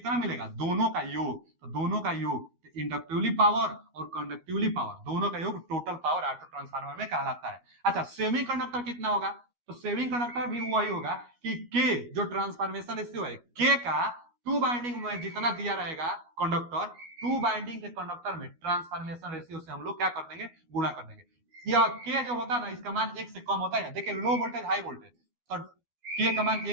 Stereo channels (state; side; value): late; left; 12 ms